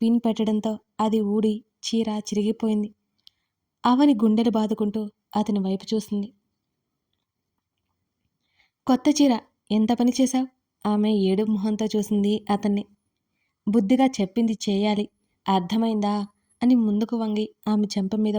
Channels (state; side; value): identical; both; correlation 1.00